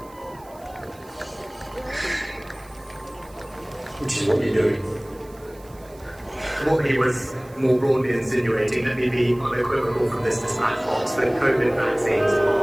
Which is what you're doing. What he was more broadly insinuating, let me be unequivocal from this dispatch box, that COVID vaccines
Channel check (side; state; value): right; noise; hiss, 26 dB below the sound